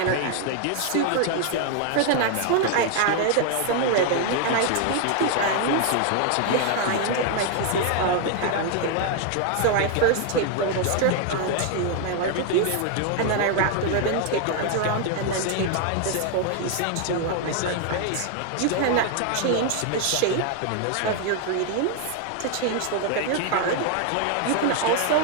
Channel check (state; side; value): different; both; correlation 0.00